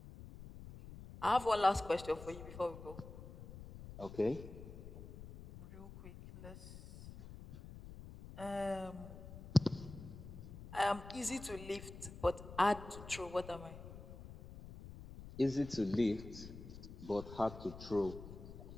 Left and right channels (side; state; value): left; noise; rumble, 13 dB below the sound